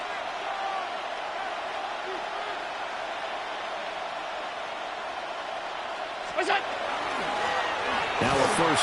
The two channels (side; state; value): both; identical; correlation 1.00